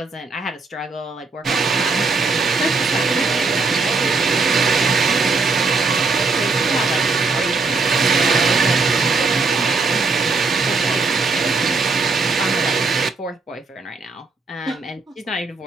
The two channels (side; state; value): left; quieter; 4.0 dB